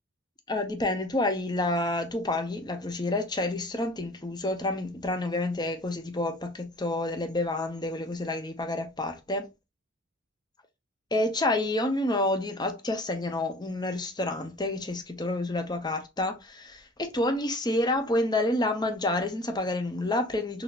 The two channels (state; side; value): normal; both; correlation 0.46